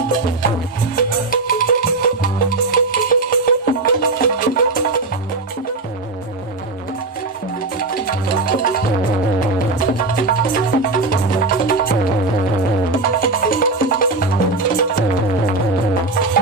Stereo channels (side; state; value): left; quieter; 3.2 dB